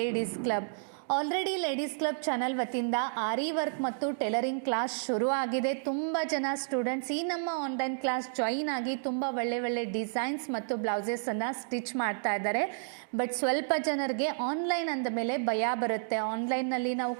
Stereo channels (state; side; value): silent; left; digital silence